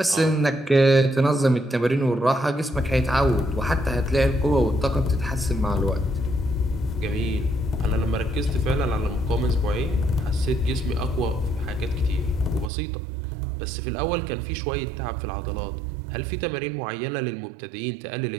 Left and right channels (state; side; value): drops out; left; at 12.7 s